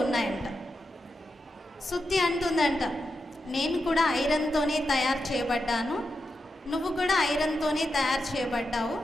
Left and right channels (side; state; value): both; normal; correlation 0.88